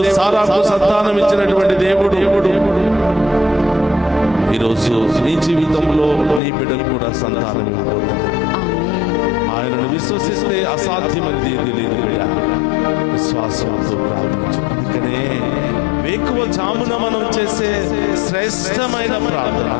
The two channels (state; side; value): drops out; right; at 6.4 s